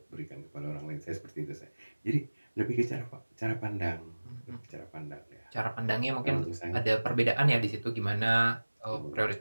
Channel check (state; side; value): inverted; both; correlation -1.00